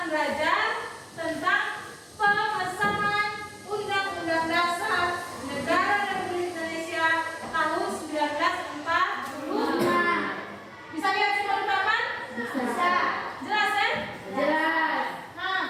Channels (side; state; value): both; identical; correlation 1.00